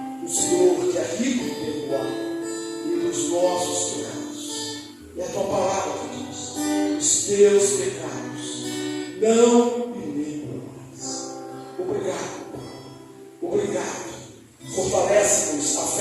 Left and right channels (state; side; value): identical; both; correlation 1.00